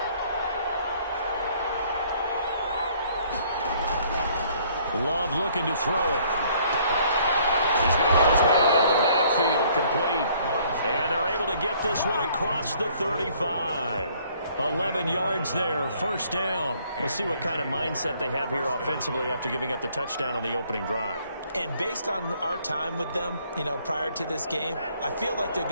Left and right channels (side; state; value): both; inverted; correlation -0.62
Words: Love looking to throw it. He's going to get his man out of the backfield, complete. And they're able to get this one across the 35. 11 yards there, first down. We'll see what kind of mindset they have here offensively after giving up the touchdown on the opening drive. And based on our time with them, prior to this game, I feel like they've